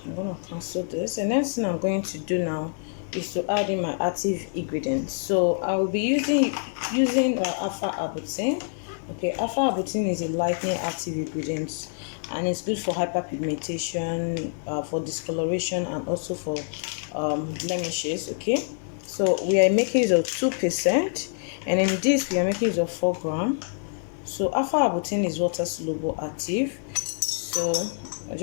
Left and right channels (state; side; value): silent; right; digital silence